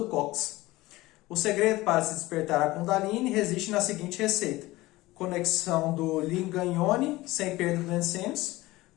cóccix. O segredo para se despertar a Kundalini reside na seguinte receita: conexão do Lingam Yoni, sem perda do sêmis,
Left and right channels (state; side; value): quieter; right; 19.0 dB